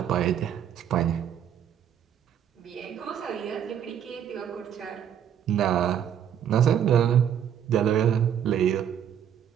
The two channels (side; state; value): left; quieter; 9.2 dB